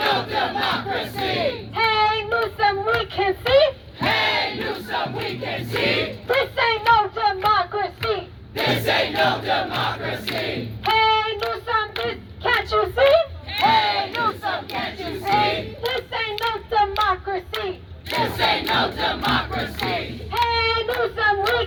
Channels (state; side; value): identical; both; correlation 1.00